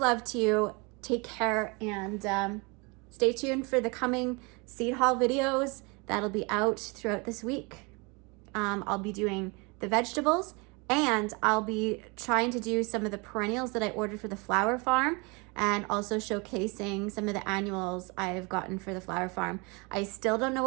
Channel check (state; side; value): quieter; left; 29.2 dB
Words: to you. Take care, and stay tuned for the coming seed haul videos that'll be out throughout this week. I'll be doing the vegetables, and I'll be trying to do some of the perennials that I ordered for the flower farm, and also showcasing some of the annuals I've gotten for the flower farm. I still don't know